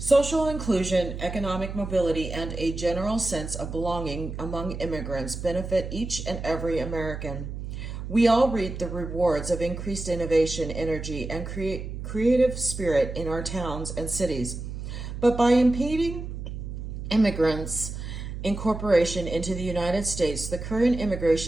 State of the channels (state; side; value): noise; right; hum, 7 dB below the sound